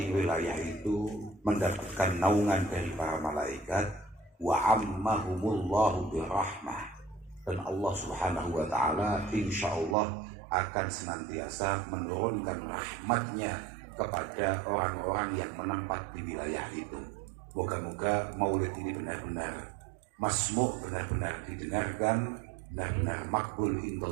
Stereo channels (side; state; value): left; drops out; at 10.0 s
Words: wilayah itu mendapatkan naungan dari para malaikat, wa ammahumullahu birahmah, dan Allah Subhanahu Wa Taala insya Allah akan senantiasa menurunkan rahmatnya kepada orang-orang yang menempat di wilayah itu. Moga-moga maulid ini benar-benar masmu', benar-benar didengarkan, benar-benar makbul